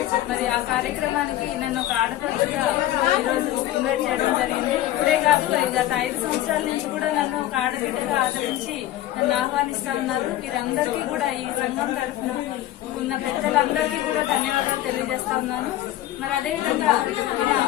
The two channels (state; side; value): quieter; right; 14.1 dB